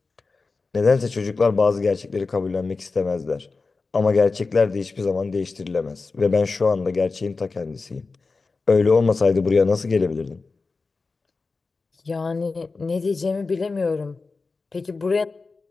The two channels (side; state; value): right; quieter; 4.0 dB